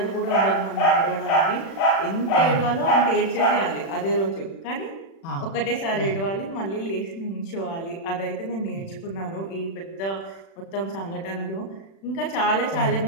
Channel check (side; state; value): right; late; 36 ms